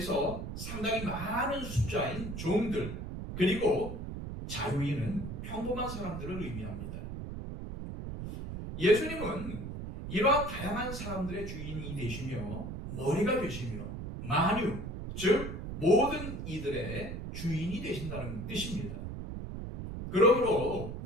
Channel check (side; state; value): right; noise; rumble, 7 dB below the sound